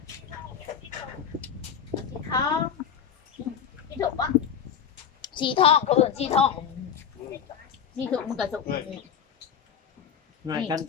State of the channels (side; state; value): right; quieter; 7.8 dB